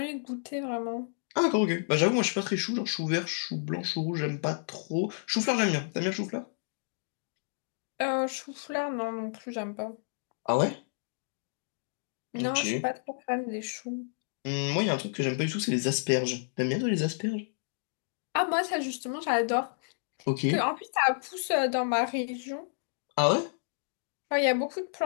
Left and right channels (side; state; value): right; silent; digital silence